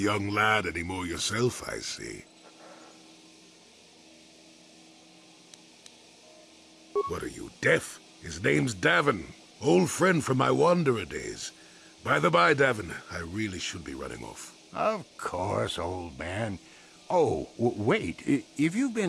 lad anymore yourself, I see. What are you, deaf? His name's Davin. Old friend from my wanderer days. By the by, Davin, I really should be running off. Of course, old man. Oh, wait. If you've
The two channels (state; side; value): identical; both; correlation 1.00